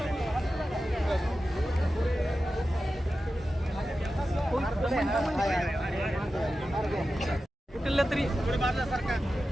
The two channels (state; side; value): normal; both; correlation 0.93